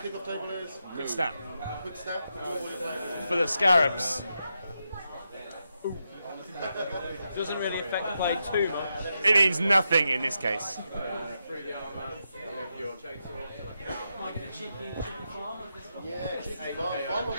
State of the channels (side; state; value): both; inverted; correlation -0.85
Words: table is? Quick snap. Quick snap. You know what you're playing. For the Scarabs, Doesn't really affect the play too much. it means nothing in this case. Yeah, cheeky farm away.